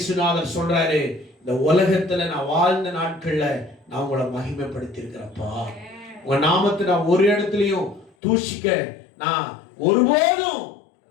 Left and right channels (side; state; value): right; drops out; at 8.1 s